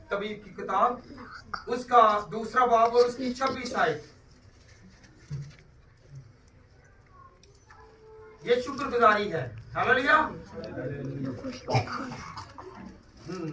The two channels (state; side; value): identical; both; correlation 1.00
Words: तबीब की किताब, उसका 2 बाब और उसकी 26 आयत। ये शुक्रगुजारी है। हालेलुया।